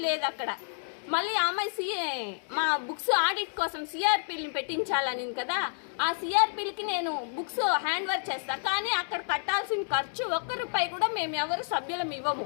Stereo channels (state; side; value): silent; right; digital silence